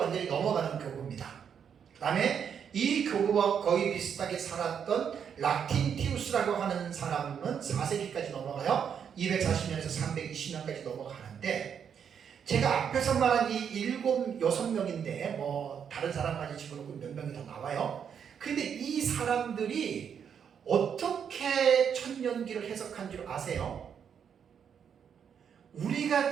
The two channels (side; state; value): left; quieter; 7.7 dB